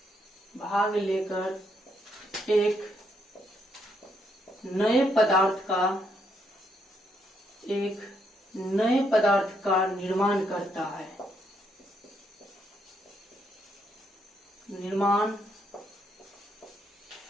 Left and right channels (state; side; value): normal; both; correlation 0.75